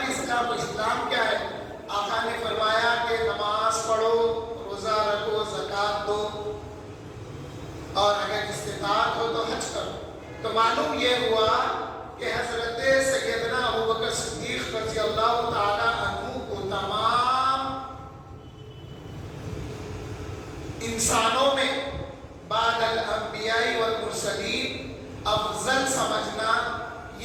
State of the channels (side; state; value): both; identical; correlation 1.00